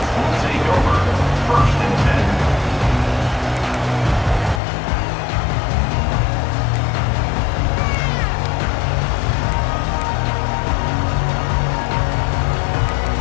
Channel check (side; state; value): right; drops out; at 4.6 s